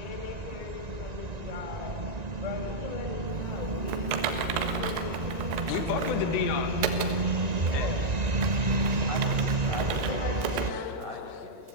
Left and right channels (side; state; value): left; late; 1.9 ms